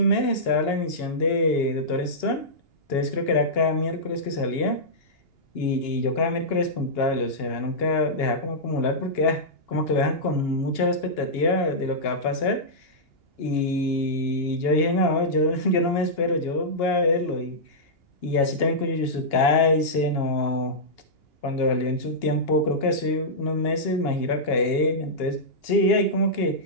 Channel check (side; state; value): right; late; 2.8 ms